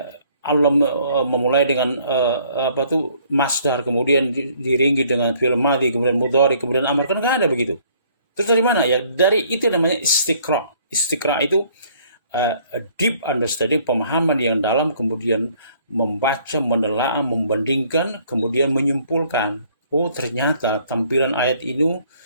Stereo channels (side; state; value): both; inverted; correlation -0.61